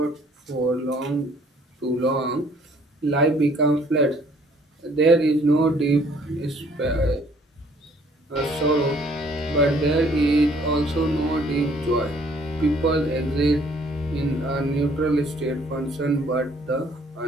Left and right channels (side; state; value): both; normal; correlation 0.60